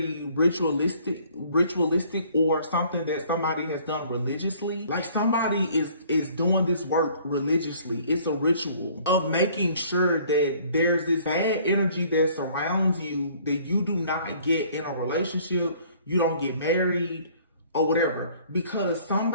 ritualistic or something that somebody has done religiously. Like somebody is doing this work religiously. It's a ritual of making sure that there's this bad energy that surrounds you, that you do not get in a relationship, you don't get married, or whatever, because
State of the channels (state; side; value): inverted; both; correlation -0.57